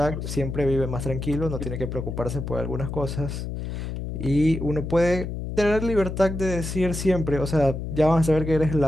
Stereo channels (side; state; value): left; noise; hum, 6 dB below the sound